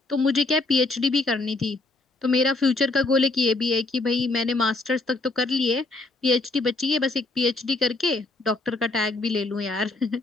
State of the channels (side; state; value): right; quieter; 3.2 dB